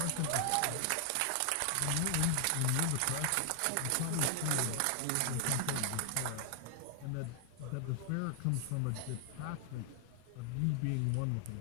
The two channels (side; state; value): both; different; correlation 0.00